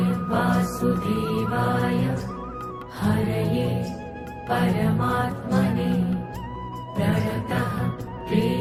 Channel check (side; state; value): both; identical; correlation 1.00